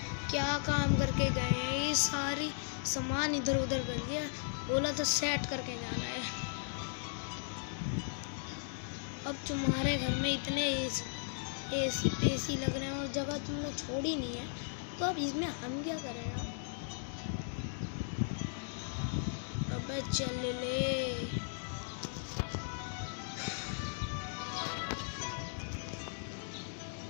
क्या काम करके गए हैं, ये सारी सामान इधर उधर कर दिया, बोला तो सेट करके जाना है। अब तुम्हारे घर में इतने एसी पेसी लग रहे हैं और जगह तुमने छोड़ी नहीं है, तो अब इसमें हम क्या करें यार? अबे चल ले।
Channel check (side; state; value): right; silent; digital silence